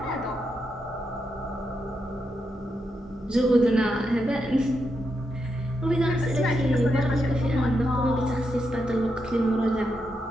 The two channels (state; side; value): normal; both; correlation 0.84